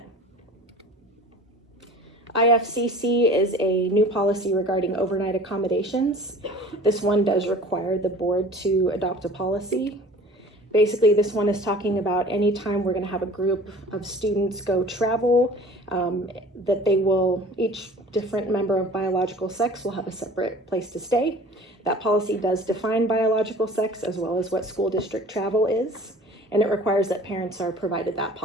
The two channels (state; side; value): normal; both; correlation 0.44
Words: IFCC is a new policy regarding overnight accommodations. This one does require the board to adopt a policy. Basically, this one is talking about any time we're going to have a group of students go travel, that they will, each different member of biological sex will have a separate place to stay. That policy does define biological sex as well as what school district travel is, and it requires that parents are provided that